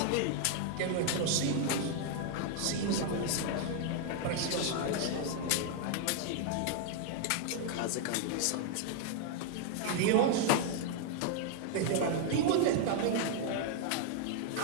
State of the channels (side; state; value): both; different; correlation 0.00